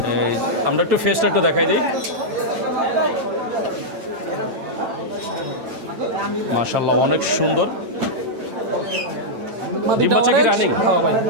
এই আমরা একটু ফেসটা একটু দেখাই দিই। মাশাআল্লাহ অনেক সুন্দর। মাদিটা বাচ্চা কি অরেঞ্জ। running? হ্যাঁ ভাই,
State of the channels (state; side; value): late; left; 8.9 ms